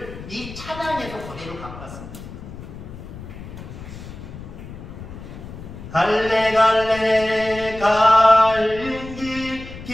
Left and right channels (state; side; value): noise; left; rumble, 13 dB below the sound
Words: 이 찬양에서 그대로 갖고 왔습니다. 갈래 갈린